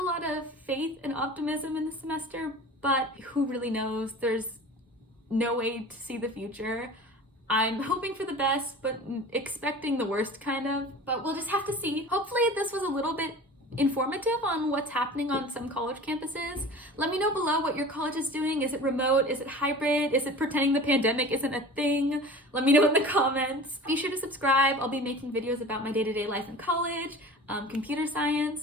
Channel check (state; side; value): normal; both; correlation 0.39